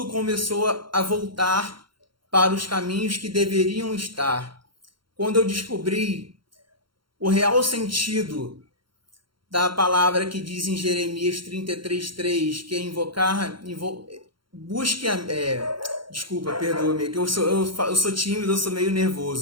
começou a voltar para os caminhos que deveriam estar. Quando eu descobri o real sentido da palavra que diz em Jeremias 33:3, que é busque desculpa, perdoa-me, que eu sou tímido, eu sou meio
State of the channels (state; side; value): late; left; 0.73 ms